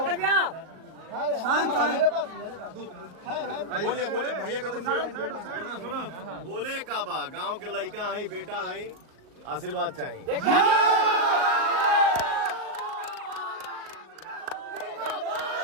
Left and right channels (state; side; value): late; left; 38 ms